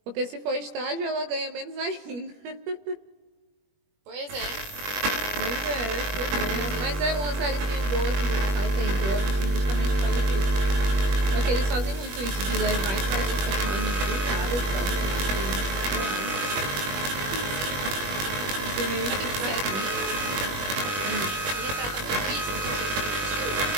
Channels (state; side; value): late; left; 21 ms